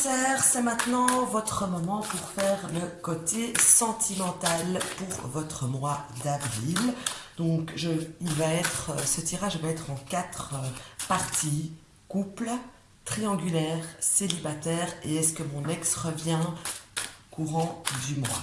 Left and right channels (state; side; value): identical; both; correlation 1.00